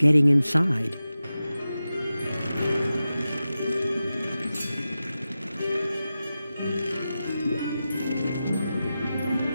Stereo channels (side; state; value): both; inverted; correlation -0.93